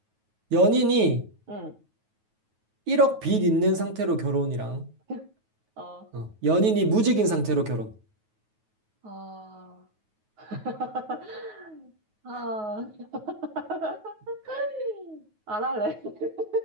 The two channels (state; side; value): late; left; 9.3 ms